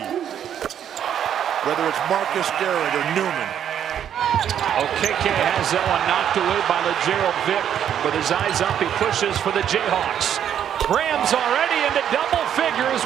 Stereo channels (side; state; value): left; quieter; 9.5 dB